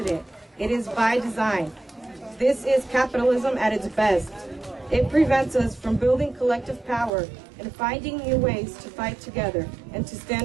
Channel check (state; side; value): drops out; left; at 7.1 s